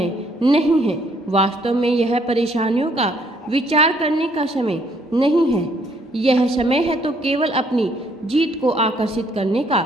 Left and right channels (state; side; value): normal; both; correlation 0.66